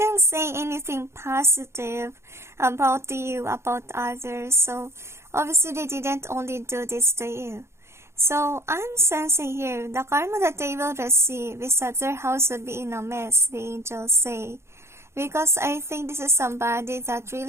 say anything positive about you, about others. So obviously they didn't only do this to you. So I'm sensing here, the karma that they will receive is that their house will be in a mess, the angels say. Because I think this is somebody that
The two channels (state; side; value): late; left; 0.13 ms